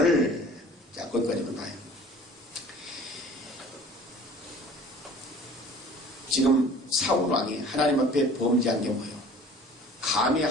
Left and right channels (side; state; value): both; normal; correlation 0.47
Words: 자, 거기까지만 봐요. 지금 사울 왕이 하나님 앞에 범죄한 게 뭐예요? 감히